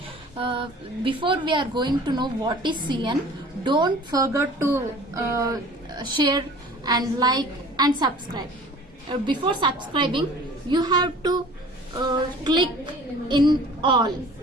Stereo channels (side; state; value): both; normal; correlation 0.46